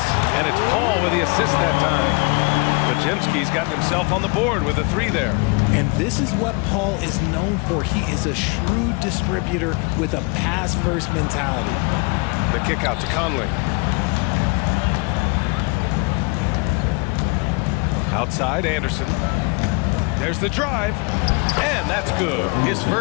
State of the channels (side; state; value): right; quieter; 29.5 dB